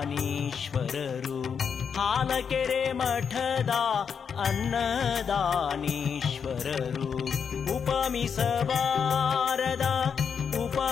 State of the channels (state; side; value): quieter; right; 6.7 dB